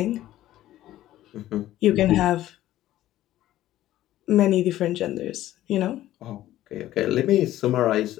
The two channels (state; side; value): quieter; right; 14.1 dB